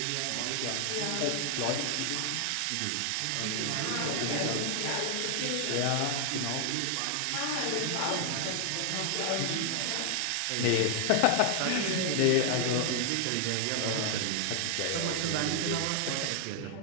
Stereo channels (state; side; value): different; both; correlation 0.00